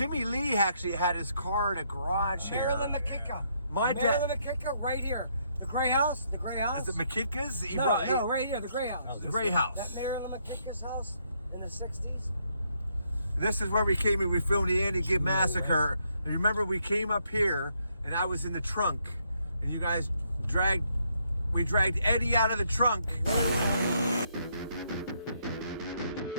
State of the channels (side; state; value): both; inverted; correlation -0.74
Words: Lee actually had his car in a garage here. Marilyn McKicker. My dad. Marilyn McKicker, right here. The gray house. The gray house. Is it McKitka's? No, right here. The gray house. The Gray House. That Marilyn McKicker's house in the 60s. This is where we came and we filmed the Andy Gibb Massacre. And remember, we came up here and I was in the trunk, and you guys dragged Eddie out of the trunk.